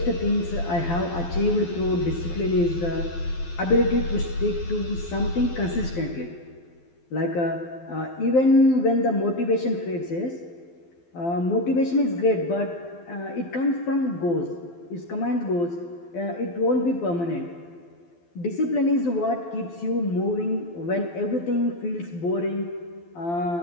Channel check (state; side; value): late; right; 12 ms